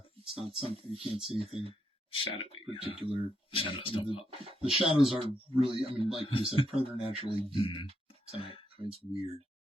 not something you can't see anything Shadowy. particular. Shadows don't pop. The shadows are really, I mean, like you said, preternaturally deep tonight. I mean, it's weird.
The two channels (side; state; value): both; normal; correlation 0.79